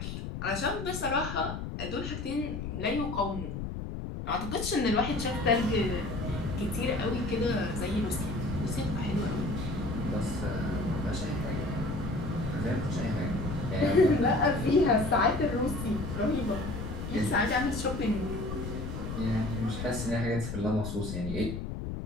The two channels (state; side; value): noise; left; rumble, 6 dB below the sound